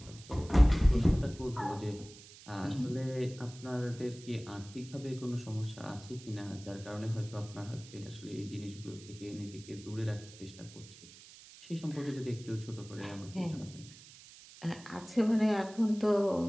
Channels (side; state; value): right; noise; hiss, 19 dB below the sound